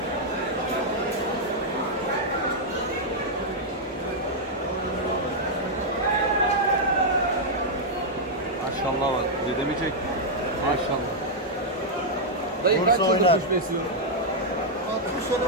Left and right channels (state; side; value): normal; both; correlation -0.04